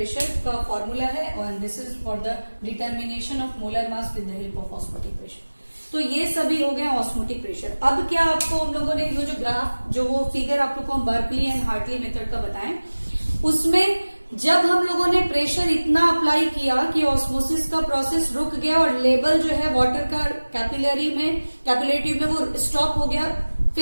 का फॉर्मूला है, और this is for the determination of molar mass with the help of osmotic pressure. तो ये सभी हो गए ऑस्मोटिक प्रेशर। अब क्या आपको हम लोगों ने जो ग्राफ जो वो फिगर आप लोग को हम बर्कली एंड हार्टली मेथड का बताएं, उसमें जब हम लोगों ने प्रेशर इतना अप्लाई किया कि ऑस्मोसिस का प्रोसेस रुक गया और लेवल जो है वाटर का कैपिलरी में ट्यूब में वो स्टॉप हो गया,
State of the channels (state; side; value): inverted; both; correlation -1.00